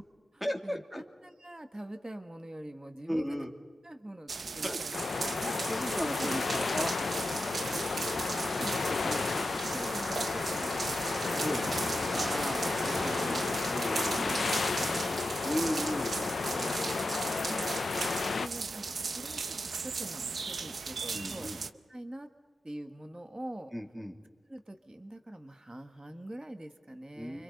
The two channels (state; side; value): normal; both; correlation 0.89